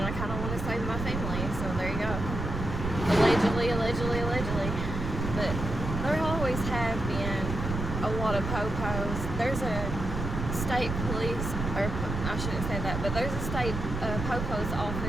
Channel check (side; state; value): right; noise; rumble, 4 dB below the sound